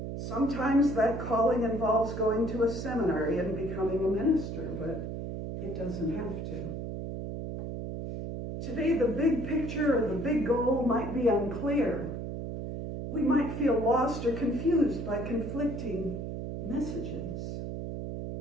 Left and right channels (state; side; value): noise; right; hum, 6 dB below the sound